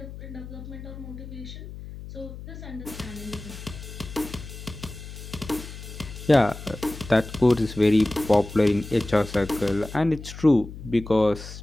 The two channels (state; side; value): noise; left; hum, 12 dB below the sound